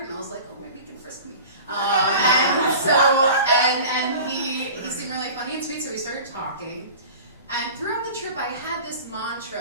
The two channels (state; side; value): inverted; both; correlation -0.39